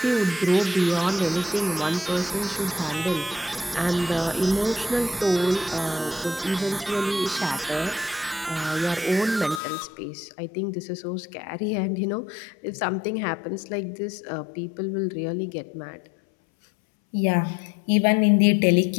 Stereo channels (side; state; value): right; drops out; at 9.6 s